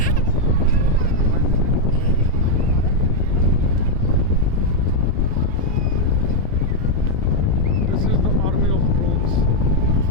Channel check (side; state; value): both; normal; correlation 0.00